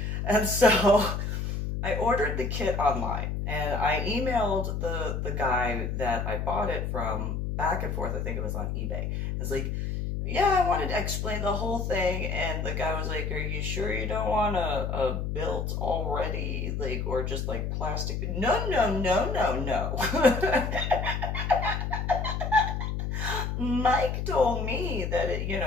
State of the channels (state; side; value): noise; left; hum, 2 dB below the sound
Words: And so I ordered the kit online, and I emailed the guy that I bought it from back and forth. I think it was on eBay. It's like, yeah, I wanted to explain the whole thing, and the guy was like, are you sure you don't want a built already, like, or just like plastic? No. Mike told me that